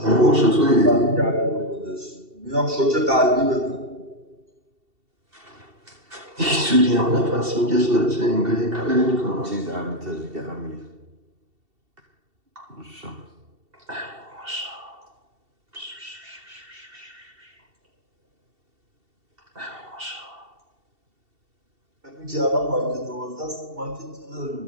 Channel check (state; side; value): late; left; 2.7 ms